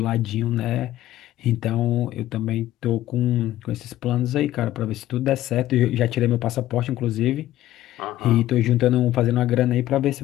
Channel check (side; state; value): right; quieter; 14.2 dB